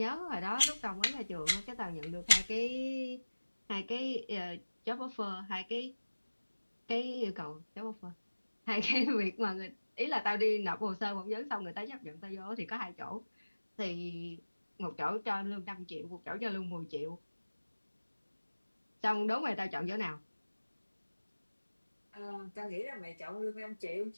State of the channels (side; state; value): both; inverted; correlation -1.00